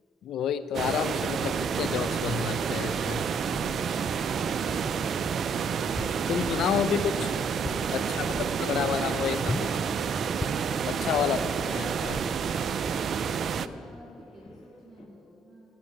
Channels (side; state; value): both; normal; correlation 0.67